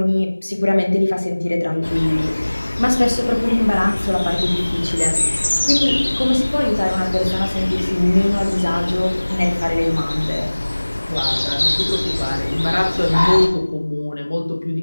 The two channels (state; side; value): inverted; both; correlation -1.00